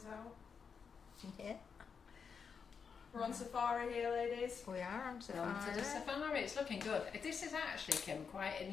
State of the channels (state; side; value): quieter; right; 6.1 dB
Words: out. Yeah, We're on safari here, ladies. we are on On to safari. the safari, it's looking good. This is actually, Kim, quite an